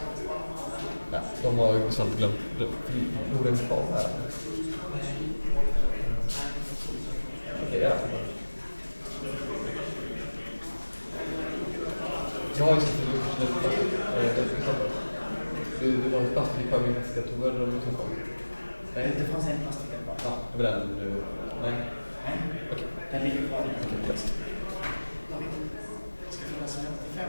ja, de har ju samt glömt Norden kvar här. Okej, ja. Jag har ju sett det var plastik kvar i min väska. Tog jag den utanför? Nej, det fanns en plastik där bara. Ja, det var den du... Nej. Nej, Okej. den ligger kvar. Okej, yes. Det ska finnas 55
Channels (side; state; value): both; inverted; correlation -1.00